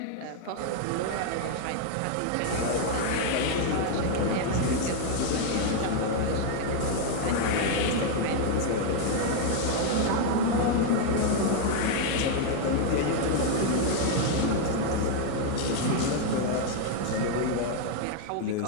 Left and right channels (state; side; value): different; both; correlation 0.00